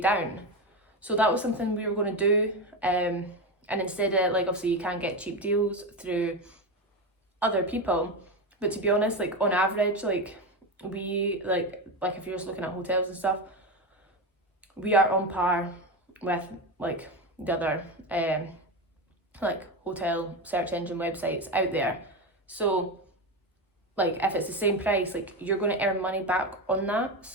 So that was something we were going to do. And instead of, like, obviously you can get cheap deals through other people, but to be honest, like on average, like we like if you're just looking at hotels and stuff, we are on par with like the other like hotel search engine websites out there. So like if it's the same price, like you're going to earn money back on that.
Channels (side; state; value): both; normal; correlation 0.17